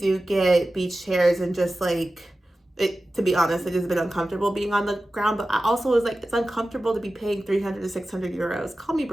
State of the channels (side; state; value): both; normal; correlation 0.95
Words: get beach chairs and just, like, to be honest, it has been uncomfortable being on the ground. But I also was like, it's uncomfortable to be paying 300 to 600 euros. Call me